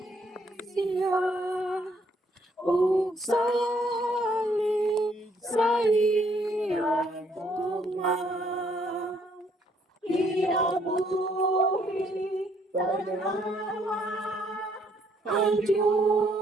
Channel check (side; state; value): both; normal; correlation 0.68